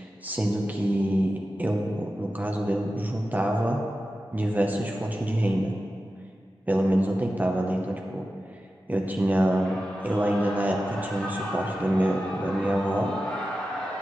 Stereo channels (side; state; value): both; normal; correlation 0.93